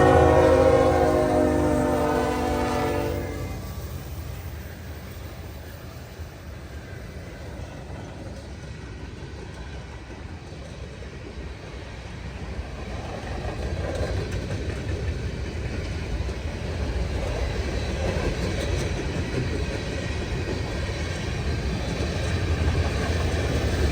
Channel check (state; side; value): identical; both; correlation 1.00